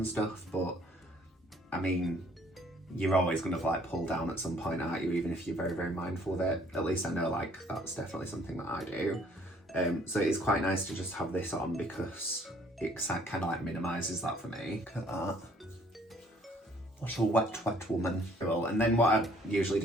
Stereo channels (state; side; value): normal; both; correlation 0.60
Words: stuff, but I mean, you're always going to like pull down at some point, aren't you? Even if you're very, very mindful of it. At least I know like that's definitely something that I do. So it's quite nice to just have this on because it kind of like minimises that for me. Look at that. What a wet, wet woman. Cool. And then what I usually